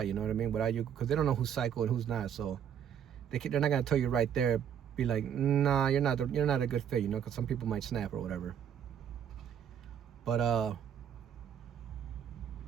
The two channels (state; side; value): quieter; left; 8.8 dB